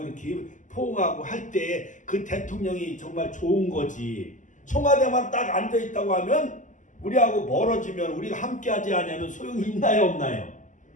이렇게 포옹하고 할 때 그 대통령이 정말 좋은 거지. 청와대만 딱 앉아 있다고 하면 우리하고 멀어지면 우리가 함께하지 않으면 소용이 있나요, 없나요?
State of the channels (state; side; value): late; right; 0.37 ms